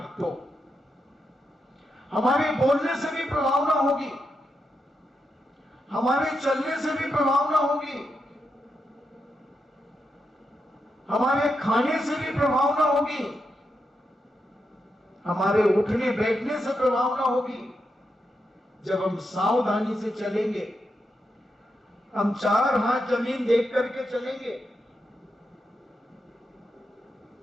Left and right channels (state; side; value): normal; both; correlation 0.85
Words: तो हमारे बोलने से भी प्रभावना होगी, हमारे चलने से भी प्रभावना होगी, हमारे खाने से भी प्रभावना होगी, हमारे उठने बैठने से प्रभावना होगी। जब हम सावधानी से चलेंगे, हम 4 हाथ जमीन देख करके चलेंगे।